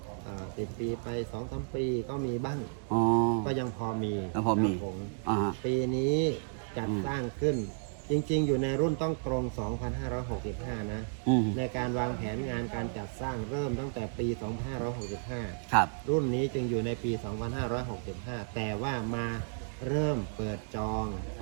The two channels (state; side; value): silent; left; digital silence